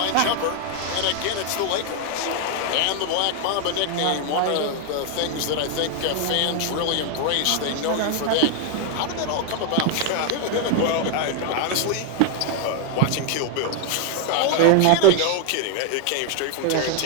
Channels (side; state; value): both; different; correlation 0.00